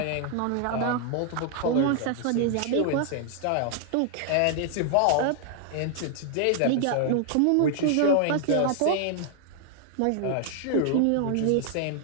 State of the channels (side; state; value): both; different; correlation 0.00